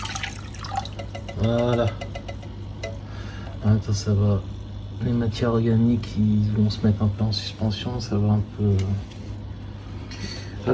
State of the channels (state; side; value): identical; both; correlation 1.00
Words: Voilà. Attends, ça va. Les matières organiques, ils vont se mettre un peu en suspension, ça va un peu...